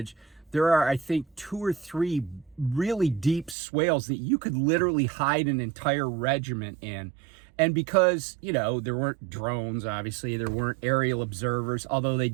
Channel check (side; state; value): left; drops out; at 3.6 s